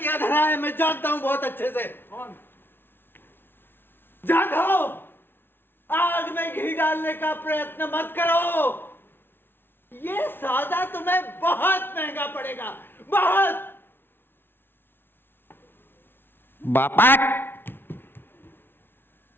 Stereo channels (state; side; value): late; right; 0.11 ms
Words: धरा है, मैं जानता हूँ बहुत अच्छे से। कौन? जाधव, आग में घी डालने का प्रयत्न मत करो। ये सौदा तुम्हें बहुत महंगा पड़ेगा, बहुत। बापट,